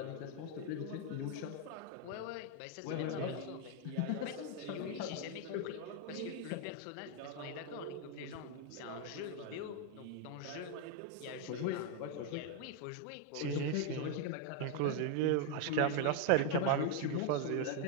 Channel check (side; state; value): both; different; correlation 0.01